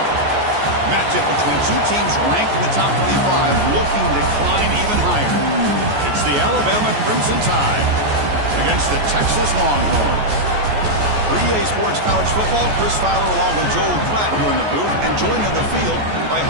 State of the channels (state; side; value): late; left; 14 ms